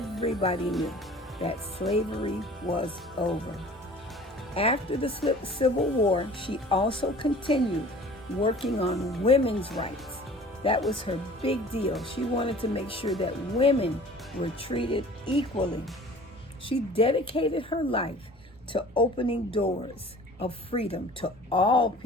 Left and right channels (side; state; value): both; normal; correlation 0.46